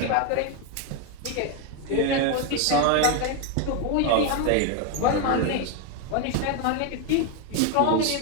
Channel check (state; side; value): different; both; correlation 0.02